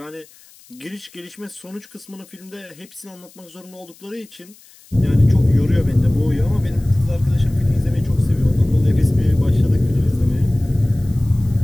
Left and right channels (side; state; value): left; noise; hiss, 26 dB below the sound